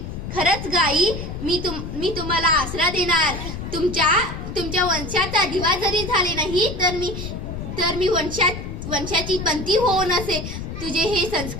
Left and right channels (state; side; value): noise; left; rumble, 7 dB below the sound